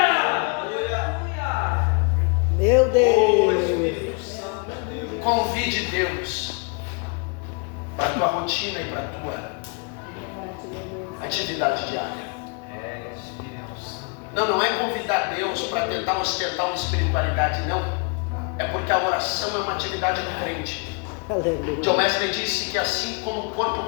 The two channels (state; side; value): quieter; right; 34.5 dB